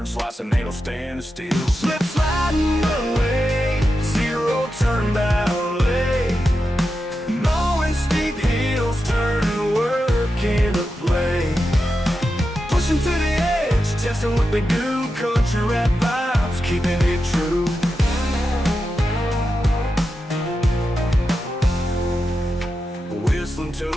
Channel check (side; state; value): both; normal; correlation 0.89